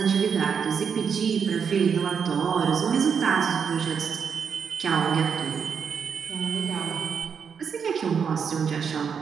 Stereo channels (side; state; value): left; quieter; 6.7 dB